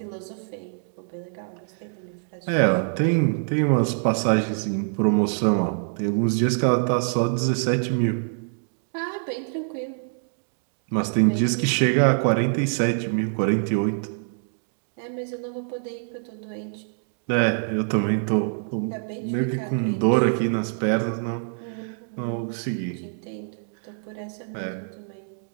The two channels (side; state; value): left; silent; digital silence